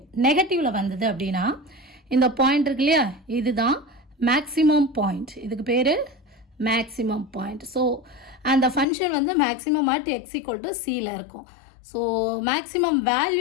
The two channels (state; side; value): drops out; right; at 8.8 s